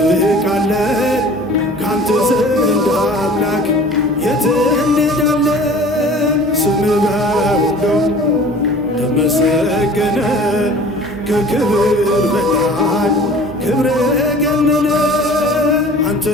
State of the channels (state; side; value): noise; right; hum, 20 dB below the sound